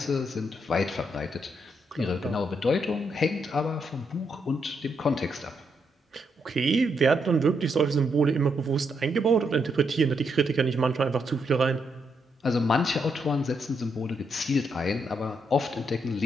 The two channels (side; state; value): both; normal; correlation 0.78